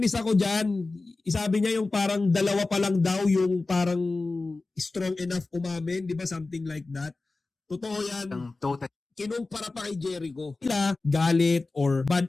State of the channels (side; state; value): right; quieter; 3.5 dB